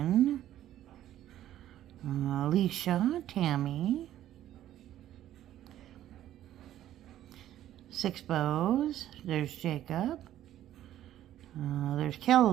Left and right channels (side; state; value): left; quieter; 12.5 dB